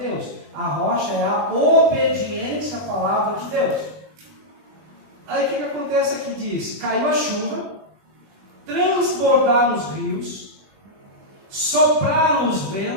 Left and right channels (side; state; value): left; late; 20 ms